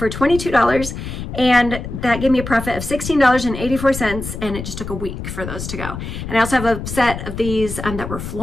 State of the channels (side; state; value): left; noise; rumble, 8 dB below the sound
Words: $22, and that gave me a profit of $16.84, and it just took a week for those to go. And I also have a set of these that were